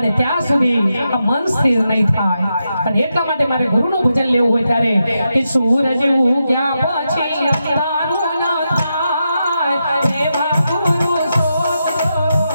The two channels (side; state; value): both; inverted; correlation -0.86